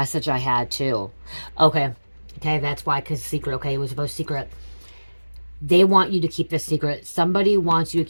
I had too. Okay, that's why, because secret. Okay, it was about secret. They want you to keep this secret. Somebody wants you to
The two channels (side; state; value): both; inverted; correlation -1.00